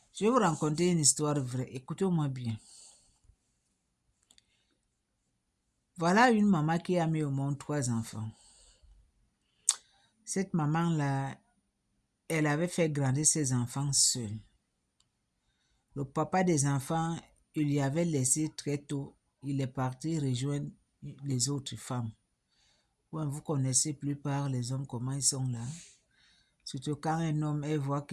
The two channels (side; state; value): both; identical; correlation 1.00